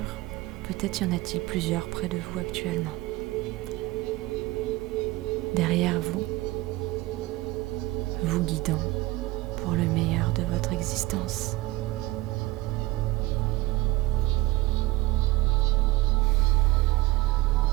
Peut-être y en a-t-il plusieurs près de vous actuellement. Derrière vous, vous guidant pour le meilleur de votre existence.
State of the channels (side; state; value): left; quieter; 19.3 dB